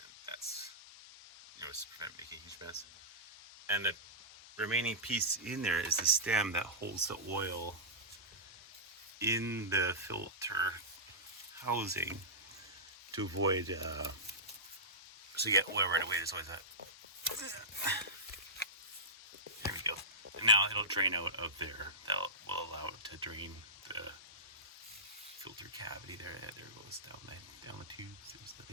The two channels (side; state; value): both; normal; correlation -0.16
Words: that's, just prevent making a huge mess. And the remaining piece in there is the stem that holds the oil in the filter housing to avoid, so you get oil right away. There's always that. There we go. And now it'll drain out of there. That will allow it to drain the filter cavity there. Yeah, there it goes down the tubes. There's the